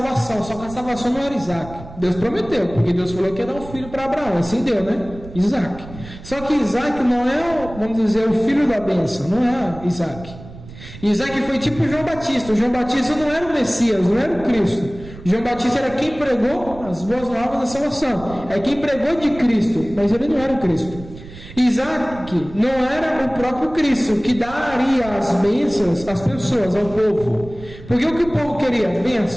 só que a salvação não era Isaac. Deus prometeu, porque Deus falou que ia dar um filho para Abraão, assim deu, né? Isaac. Só que Isaac não é, vamos dizer, o filho da bênção, não é Isaac. Isaac foi tipo João Batista. O João Batista não era o Messias, não era o Cristo. O João Batista era quem pregou as boas novas da salvação, é quem pregou de Cristo, mas ele não era o Cristo. Isaac não era o próprio Cristo, que daria as bênçãos às pessoas, ao povo. Porque o que o povo queria?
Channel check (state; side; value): noise; right; rumble, 16 dB below the sound